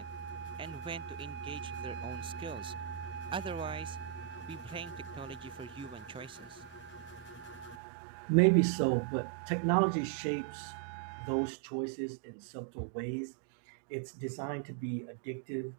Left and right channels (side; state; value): left; drops out; at 7.8 s